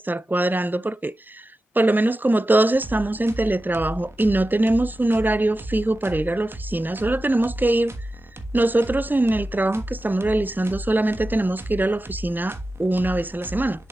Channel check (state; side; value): normal; both; correlation 0.93